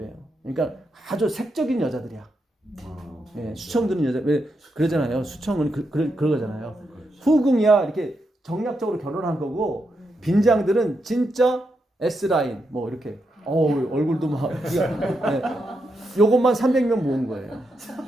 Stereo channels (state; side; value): normal; both; correlation 0.84